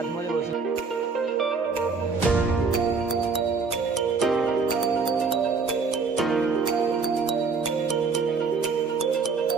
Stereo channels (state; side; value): quieter; left; 4.8 dB